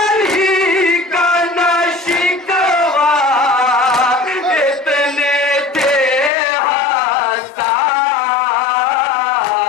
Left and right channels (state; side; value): drops out; right; at 6.3 s